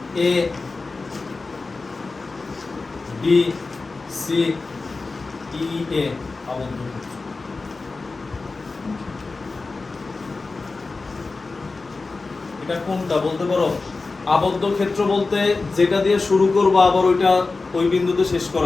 এ বি সি ই এ আবদ্ধ ক্ষেত্র। এটা কোনটা বলতে পারো, আবদ্ধ ক্ষেত্র বলতে যেটা দিয়ে শুরু করবো আবার ওইটা ওই বিন্দুতে শেষ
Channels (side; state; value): right; quieter; 3.8 dB